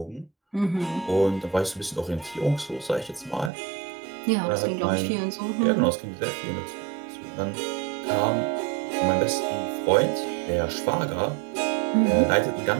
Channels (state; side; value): drops out; left; at 3.5 s